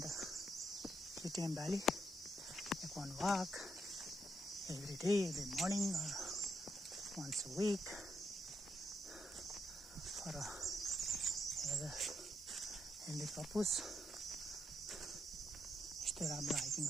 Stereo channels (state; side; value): normal; both; correlation 0.79